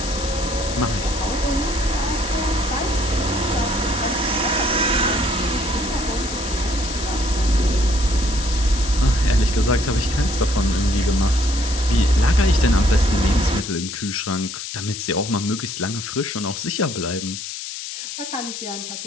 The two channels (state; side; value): noise; left; hiss, 8 dB below the sound